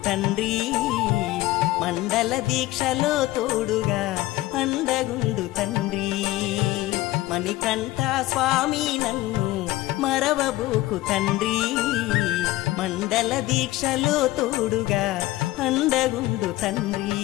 తండ్రి మండల దీక్షలో తోడుగా అండగుండు తండ్రి మణికంఠ స్వామి నన్ను మరవబోకు తండ్రి మండల దీక్షలో తోడుగా అండగుండు తండ్రి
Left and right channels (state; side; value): quieter; right; 17.5 dB